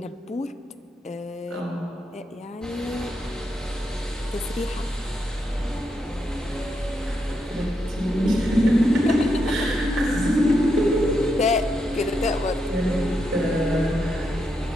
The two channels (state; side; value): normal; both; correlation 0.82